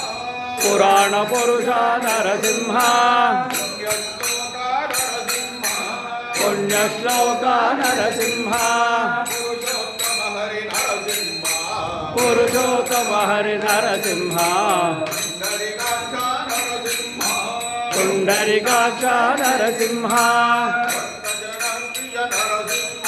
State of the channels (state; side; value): identical; both; correlation 1.00